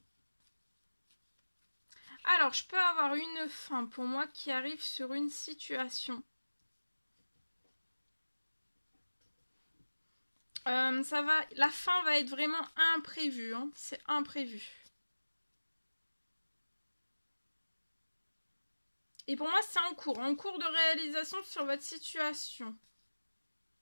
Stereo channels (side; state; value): both; inverted; correlation -1.00